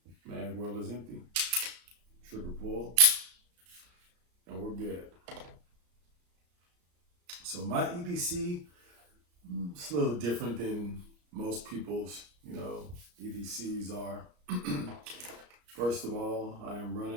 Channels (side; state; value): left; late; 34 ms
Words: Mag well is empty. Trigger pull. And we're good. So my EDC, it's a little different than most people's, EDCs are. First of all, I am